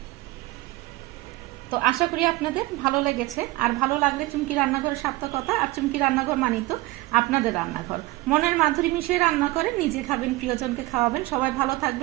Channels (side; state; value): left; quieter; 19.8 dB